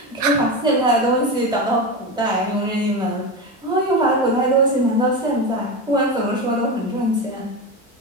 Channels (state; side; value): normal; both; correlation 0.20